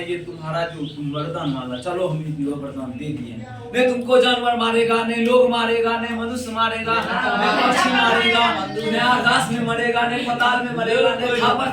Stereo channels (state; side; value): identical; both; correlation 1.00